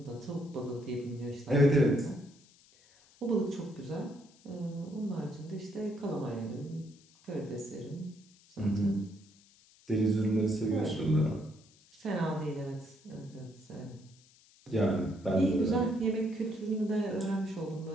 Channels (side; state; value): left; noise; hiss, 28 dB below the sound